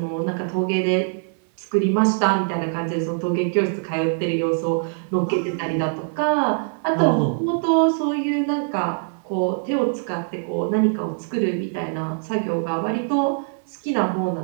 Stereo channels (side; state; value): left; silent; 63 dB below the other